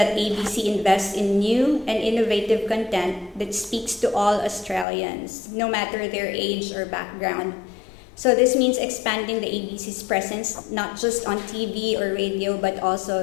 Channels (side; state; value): right; drops out; at 4.9 s